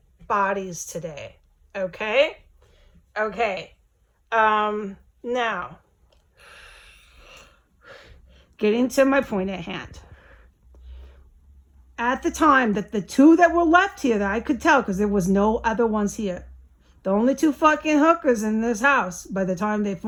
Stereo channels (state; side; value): identical; both; correlation 1.00